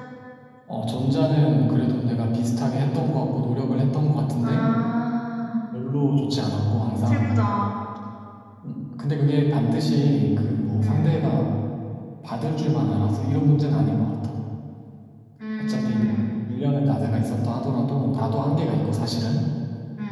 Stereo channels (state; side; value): identical; both; correlation 1.00